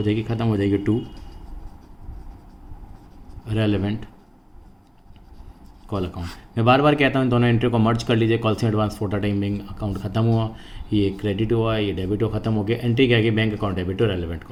जाएगी, ख़त्म हो जाएगी टू रेलेवेंट कॉल अकाउंट। मैं बार बार कहता हूँ दोनों एंट्री को मर्ज कर लीजिए। Calls in advance for the time being account खत्म हुआ, ये क्रेडिट हुआ, ये डेबिट हो खत्म हो गया, एंट्री क्या गई, bank account debit to relevant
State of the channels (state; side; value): identical; both; correlation 1.00